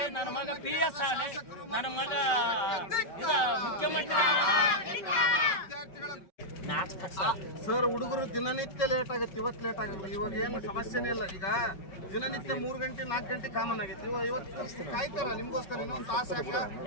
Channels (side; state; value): right; late; 5.3 ms